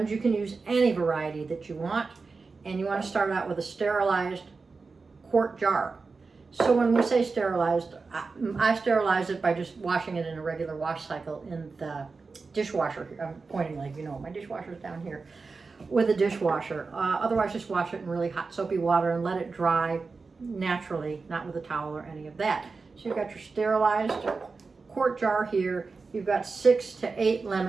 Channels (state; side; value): quieter; left; 4.3 dB